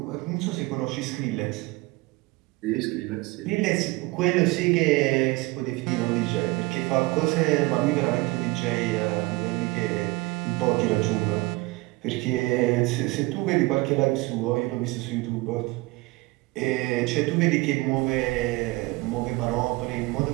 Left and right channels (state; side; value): quieter; left; 22.5 dB